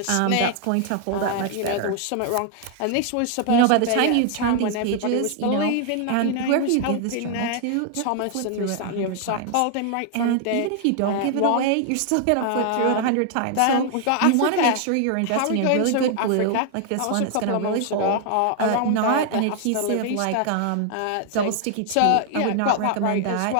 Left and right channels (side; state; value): both; different; correlation 0.00